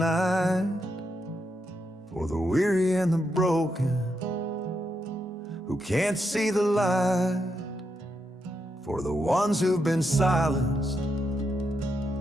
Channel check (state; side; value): normal; both; correlation 0.82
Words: for the weary and the broken who can't see the light, for the ones who've been silenced,